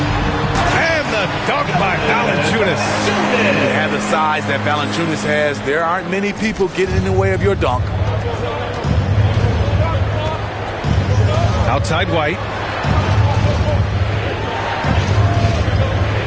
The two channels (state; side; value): identical; both; correlation 1.00